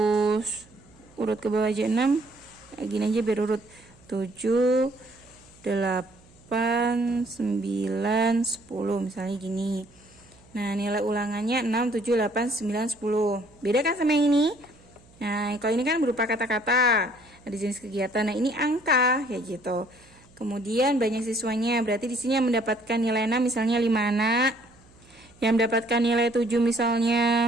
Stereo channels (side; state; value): right; noise; hum, 27 dB below the sound